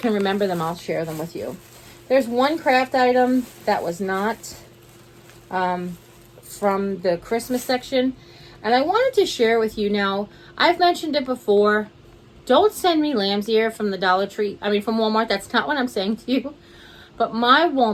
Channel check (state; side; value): identical; both; correlation 1.00